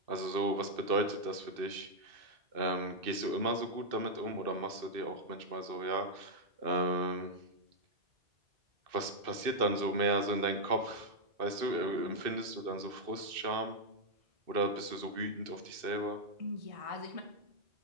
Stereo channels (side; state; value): left; late; 2.6 ms